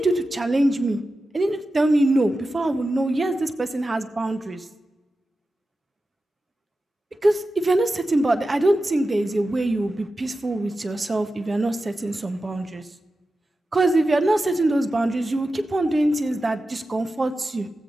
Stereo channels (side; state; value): both; normal; correlation 0.93